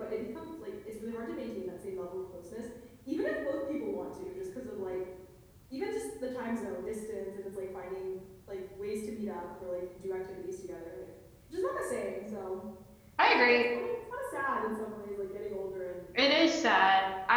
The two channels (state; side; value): identical; both; correlation 1.00